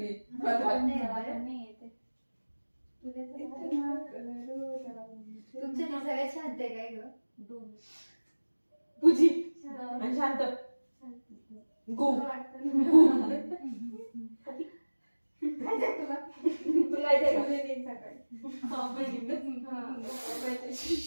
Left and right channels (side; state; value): both; inverted; correlation -1.00